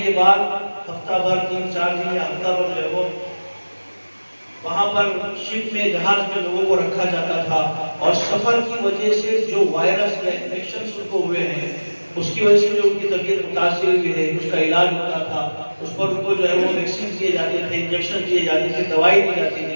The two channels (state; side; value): inverted; both; correlation -1.00